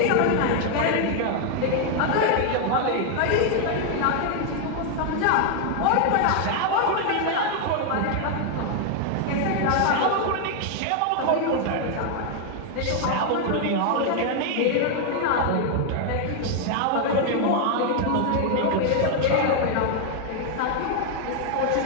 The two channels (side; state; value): both; different; correlation 0.00